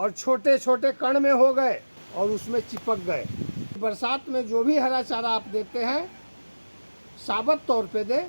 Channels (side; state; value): both; inverted; correlation -1.00